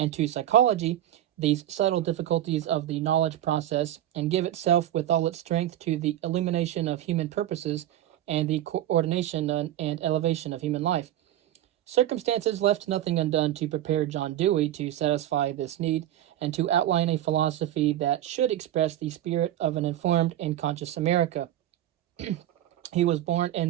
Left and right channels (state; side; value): quieter; left; 12.6 dB